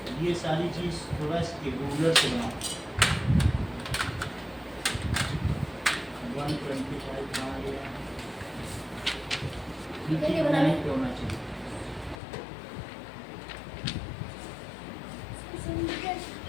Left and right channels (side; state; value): right; drops out; at 12.2 s